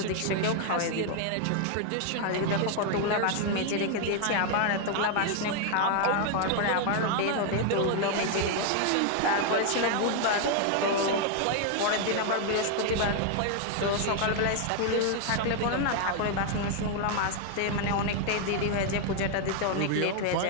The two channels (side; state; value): both; different; correlation 0.00